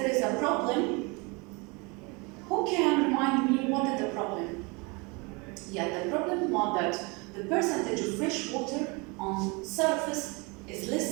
is a problem. Who can remind me what is the problem? Yeah, the problem was that the percentage of fresh water on surface is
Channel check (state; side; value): quieter; left; 28.7 dB